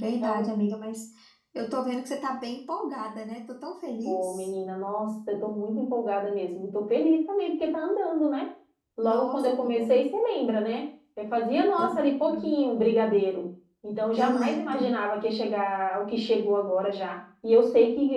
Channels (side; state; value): both; identical; correlation 1.00